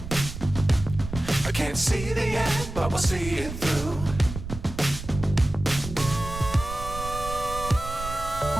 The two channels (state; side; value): noise; right; rumble, 9 dB below the sound